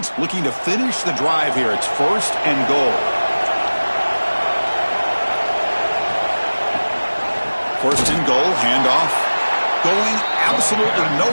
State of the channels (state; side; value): inverted; both; correlation -1.00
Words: looking to finish the drive here. It's 1st and goal. 1st and goal, handoff. Going absolutely